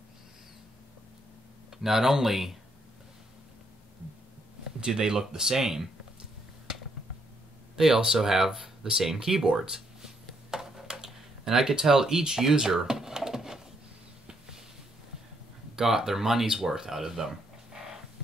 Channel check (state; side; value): normal; both; correlation 0.73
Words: not only do they look the same, they also have the same keyboards. And I could tell each user got their money's worth out of them.